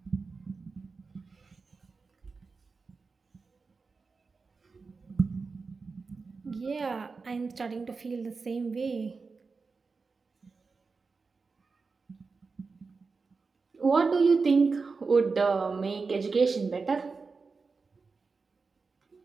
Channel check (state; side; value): quieter; left; 4.5 dB